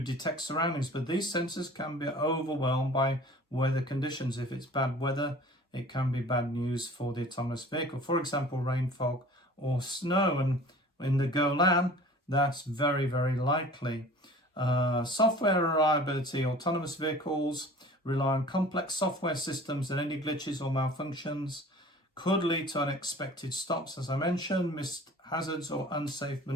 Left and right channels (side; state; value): both; normal; correlation 0.45